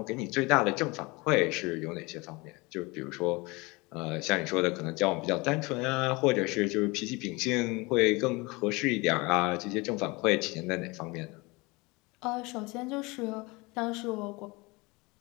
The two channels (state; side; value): quieter; right; 25.1 dB